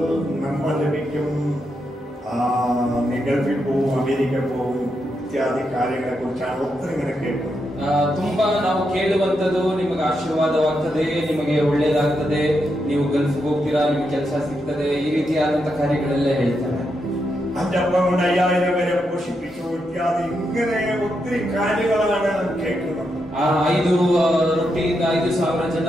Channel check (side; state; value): both; normal; correlation 0.83